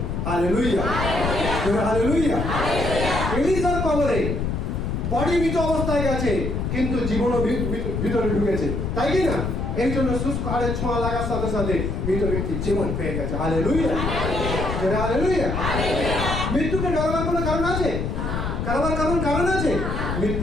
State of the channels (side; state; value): left; noise; rumble, 2 dB below the sound